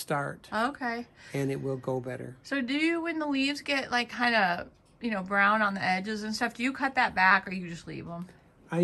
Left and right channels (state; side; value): identical; both; correlation 1.00